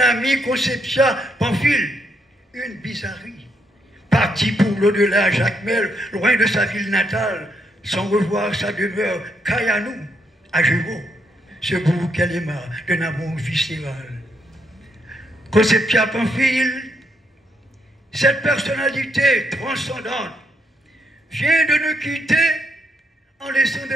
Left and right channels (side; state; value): both; normal; correlation 0.76